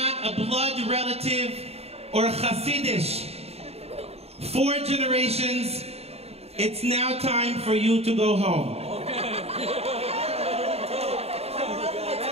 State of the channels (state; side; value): late; left; 0.30 ms